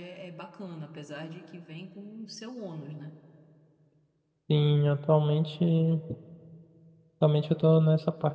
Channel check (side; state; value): both; identical; correlation 1.00